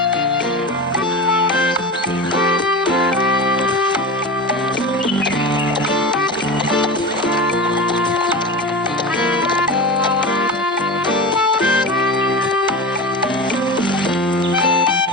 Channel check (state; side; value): normal; both; correlation 0.28